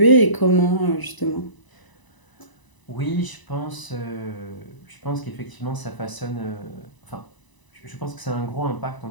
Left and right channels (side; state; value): right; late; 1.0 ms